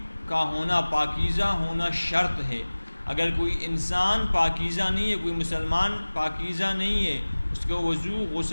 کا ہونا، پاکیزہ ہونا شرط ہے۔ اگر کوئی انسان پاکیزہ نہیں ہے، کوئی مسلمان پاکیزہ نہیں ہے، اس کو وضو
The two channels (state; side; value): inverted; both; correlation -1.00